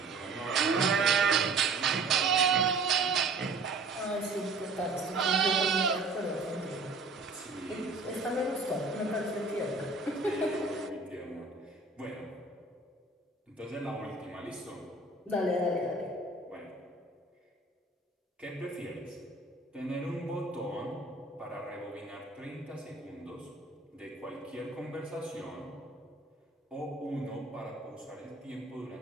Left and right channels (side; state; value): left; quieter; 3.6 dB